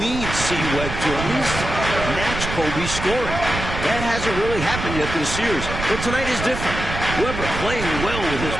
needs C-Web to at least match Kobe's scoring. That hasn't really happened yet this series, but tonight is different. Webber playing well with his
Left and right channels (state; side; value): noise; right; rumble, 6 dB below the sound